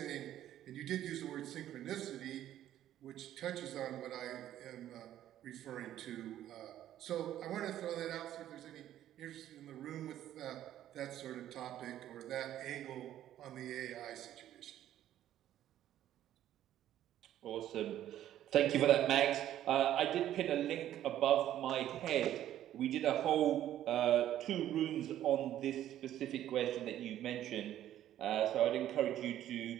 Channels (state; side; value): quieter; left; 12.1 dB